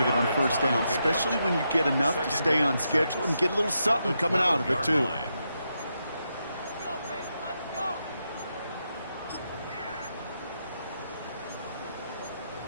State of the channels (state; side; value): inverted; both; correlation -0.83